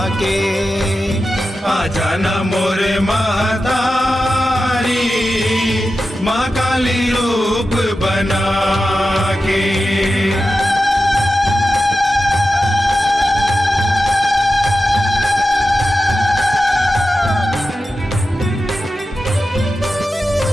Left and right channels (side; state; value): both; normal; correlation 0.92